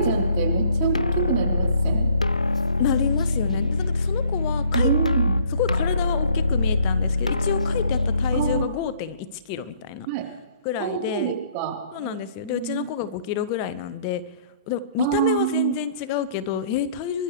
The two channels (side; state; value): both; inverted; correlation -0.60